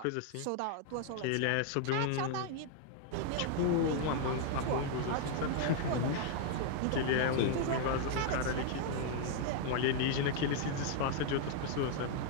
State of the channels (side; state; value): both; different; correlation 0.00